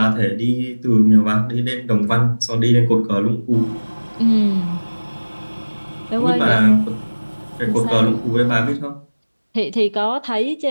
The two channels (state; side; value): inverted; both; correlation -1.00